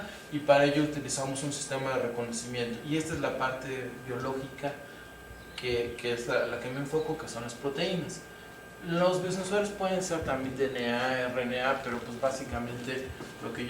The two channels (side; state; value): both; identical; correlation 1.00